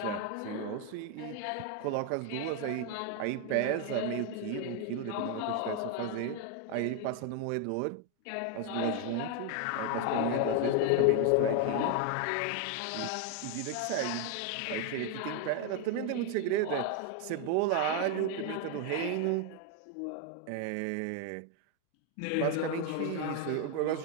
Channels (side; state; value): both; different; correlation 0.01